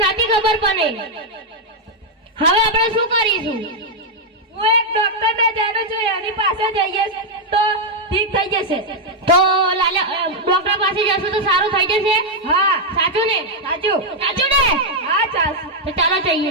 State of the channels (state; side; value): normal; both; correlation -0.01